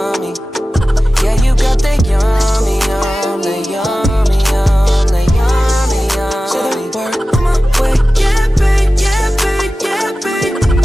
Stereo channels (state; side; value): normal; both; correlation 0.95